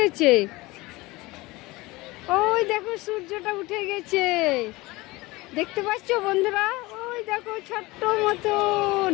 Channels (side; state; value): right; quieter; 21.4 dB